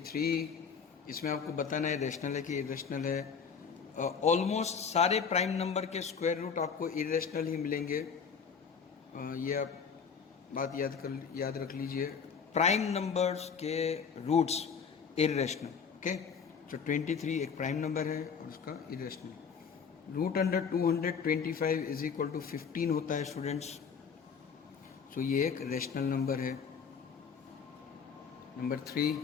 इसमें आपको बताना है रेशनल है कि इरेशनल है। ऑलमोस्ट सारे प्राइम नंबर के स्क्वायर रूट आपको इरेशनल ही मिलेंगे, ये आप बात याद रख लीजिए। प्राइम नंबर्स के रूट्स इरेशनल, ओके। तो 23 एक प्राइम नंबर है और उसका इरेशनल। √225 इज इक्वल टू 15 होता है स्टूडेंट्स, सो ये एक रेशनल नंबर है। नंबर 3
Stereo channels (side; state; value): right; quieter; 6.3 dB